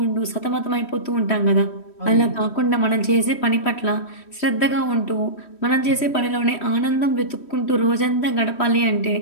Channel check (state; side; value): late; right; 3.1 ms